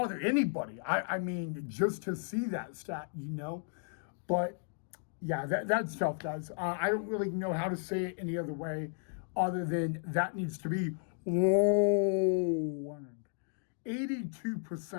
anybody. I mean, just to see that stat, But yeah, that's tough, guys. I don't really know how to say it any other way other than that needs to be lowered.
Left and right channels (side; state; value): right; silent; 55 dB below the other